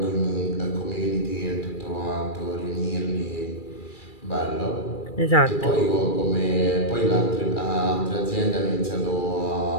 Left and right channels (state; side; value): late; right; 2.3 ms